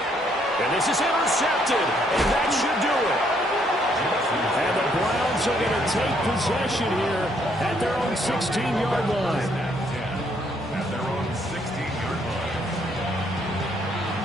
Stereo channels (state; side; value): normal; both; correlation 0.70